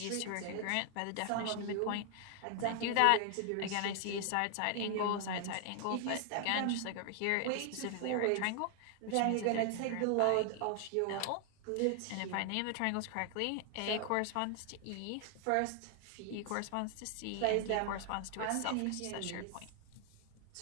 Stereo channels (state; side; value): different; both; correlation 0.00